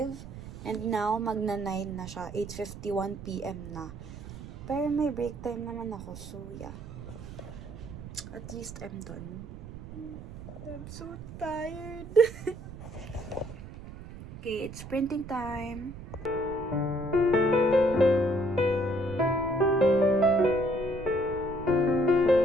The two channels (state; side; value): noise; right; rumble, 12 dB below the sound